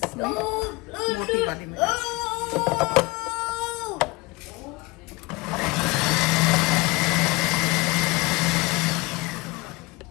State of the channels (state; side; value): quieter; right; 24.1 dB